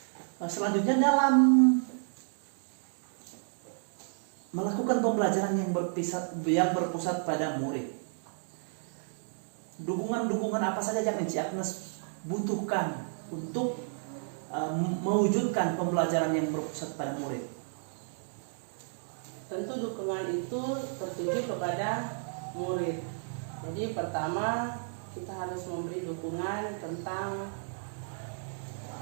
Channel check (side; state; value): left; silent; digital silence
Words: Selanjutnya, dalam melakukan pembelajaran yang berpusat pada murid, dukungan apa saja yang Enci Agnes butuhkan untuk mewujudkan pembelajaran yang berpusat pada murid? Tentu dukungan itu tertuju kepada murid. Jadi pertama kita harus memberi dukungan tentang